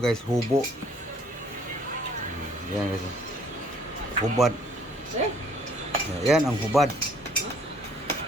guys, hubo. Yan guys, hubad. Yan ang hubad.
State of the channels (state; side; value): normal; both; correlation 0.60